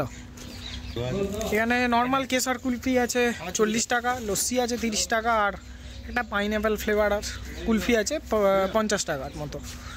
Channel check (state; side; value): identical; both; correlation 1.00